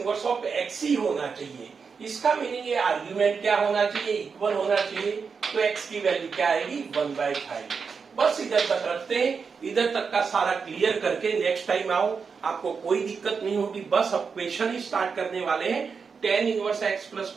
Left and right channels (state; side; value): quieter; left; 5.6 dB